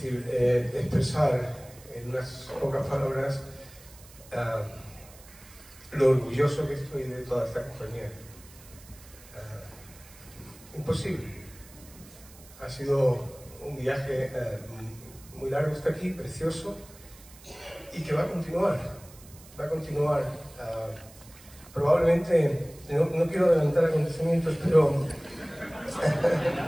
expresar en unas pocas palabras lo orgulloso que estoy de toda esta compañía. Imposible. Ha sido un viaje muy largo hasta aquí, precioso, y que va a continuar. Va a continuar. Probablemente, no quiero adelantar acontecimientos,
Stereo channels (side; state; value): right; noise; hiss, 22 dB below the sound